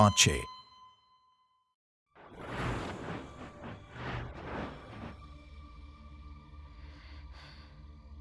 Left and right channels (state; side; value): identical; both; correlation 1.00